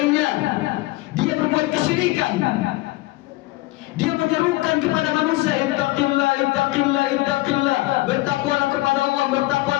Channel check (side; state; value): right; quieter; 19.7 dB